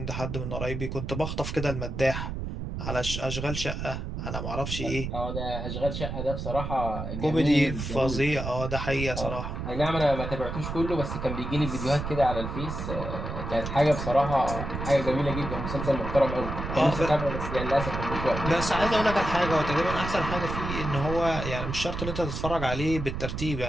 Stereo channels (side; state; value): right; noise; rumble, 5 dB below the sound